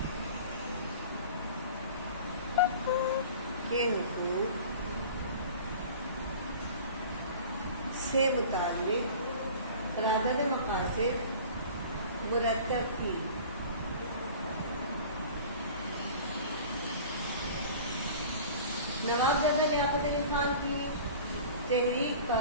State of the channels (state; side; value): inverted; both; correlation -0.42